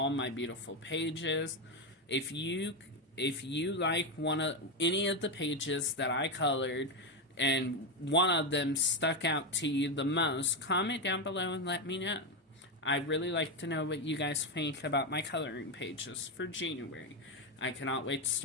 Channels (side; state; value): both; normal; correlation 0.09